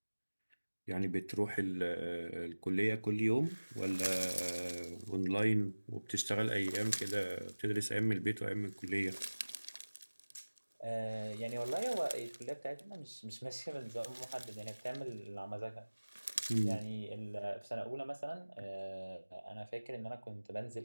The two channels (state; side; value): inverted; both; correlation -1.00